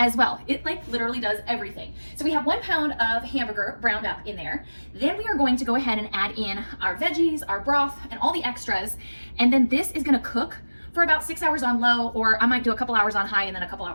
well. It like literally does everything. So we have 1 pound of hamburger browned up in there. Then we are going to go ahead and add in our veggies, our broth, and all the extras. And then this is gonna cook for about 6 hours on low, or I might do a couple hours on high and then a couple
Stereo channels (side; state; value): both; inverted; correlation -1.00